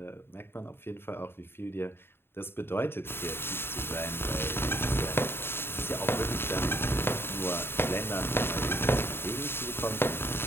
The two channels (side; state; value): right; late; 0.11 ms